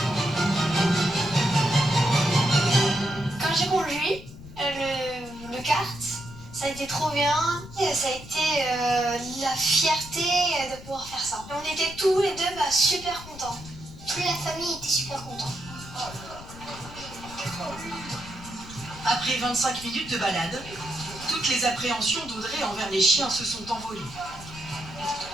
Quand j'ai conduit le kart, ça a été trop bien. Et ça a été la fierté de pouvoir faire ça. Et on était tous les deux super contents. Toute la famille était super contente. Après 25 minutes de balade, toutes les appréhensions d'Audrey envers les chiens se sont envolées.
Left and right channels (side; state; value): left; noise; rumble, 16 dB below the sound